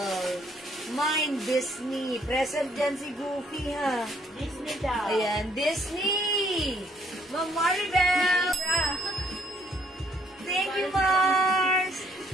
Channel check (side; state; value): both; normal; correlation 0.66